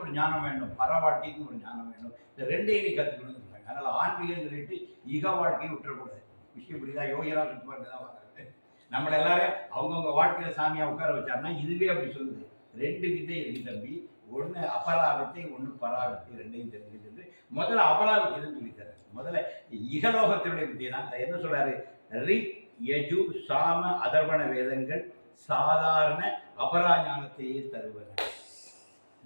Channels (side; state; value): both; inverted; correlation -1.00